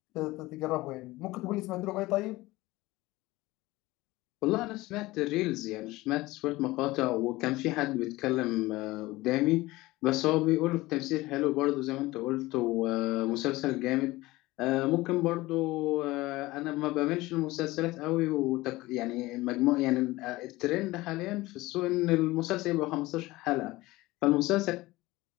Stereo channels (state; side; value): quieter; right; 19.4 dB